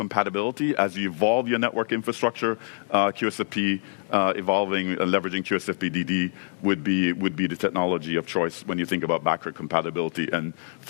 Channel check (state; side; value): silent; right; digital silence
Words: as you evolve your network infrastructure, QSFP evolving and leveraging QSFP-DD would be the technology of choice when you think about backward compatibility and